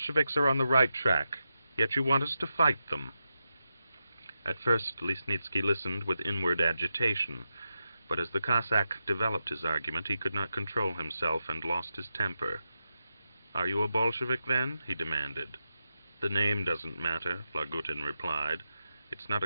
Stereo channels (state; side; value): inverted; both; correlation -0.88